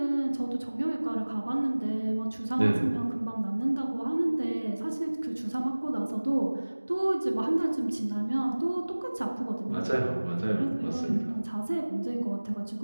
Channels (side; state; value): both; inverted; correlation -1.00